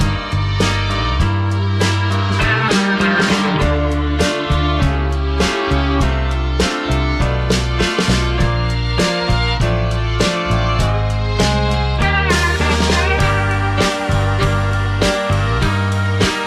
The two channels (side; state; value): both; identical; correlation 1.00